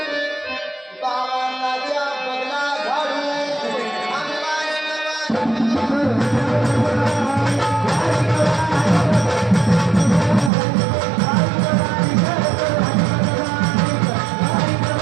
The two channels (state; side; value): drops out; left; at 10.5 s